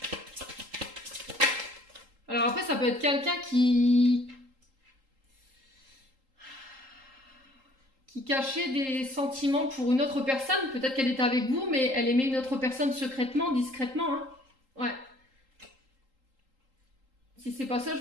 Alors après, ça peut être quelqu'un qui cachait des sentiments pour une autre personne. Peut-être qu'elle était avec vous, mais elle aimait une autre personne secrètement, discrètement. Hein. Ouais. Si c'est pas ça,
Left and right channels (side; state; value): left; late; 3.8 ms